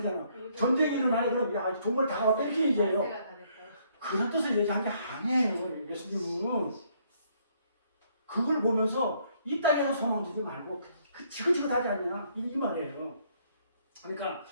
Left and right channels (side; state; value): both; inverted; correlation -0.68